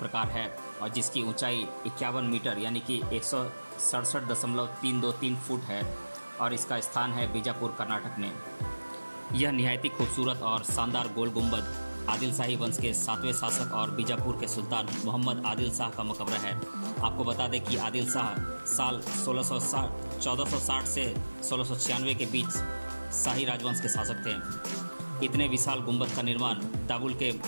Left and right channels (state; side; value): inverted; both; correlation -1.00